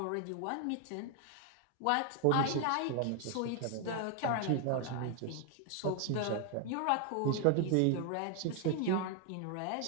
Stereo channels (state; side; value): different; both; correlation 0.00